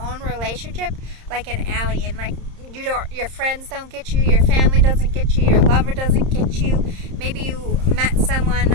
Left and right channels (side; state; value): left; late; 30 ms